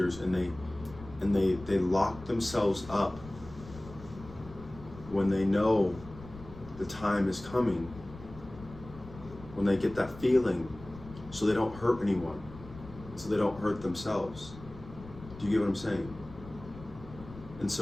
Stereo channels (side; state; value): left; noise; rumble, 16 dB below the sound